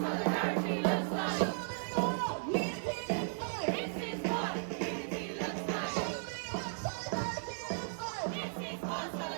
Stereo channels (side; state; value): left; silent; 54 dB below the other